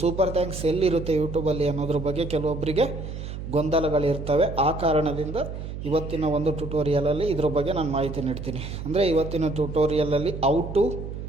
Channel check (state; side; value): noise; right; hum, 8 dB below the sound